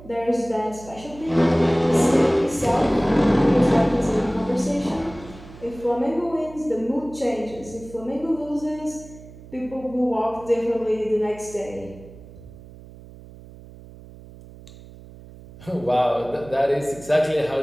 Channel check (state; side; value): noise; right; hum, 19 dB below the sound